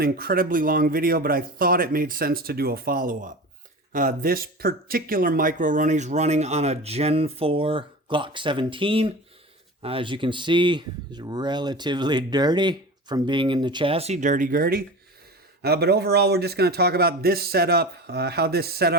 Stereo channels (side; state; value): both; normal; correlation 0.32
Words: incredibly long video, but I thought it made sense to do a follow-up. This particular Micro Roni is running on a Gen 4 Glock 17. As you can see, it's relatively dirty from being in the chassis, dirty-gurdy. But overall, we're just going to talk about this setup, how this